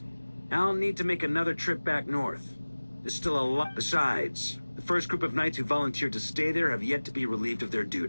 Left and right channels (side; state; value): both; inverted; correlation -1.00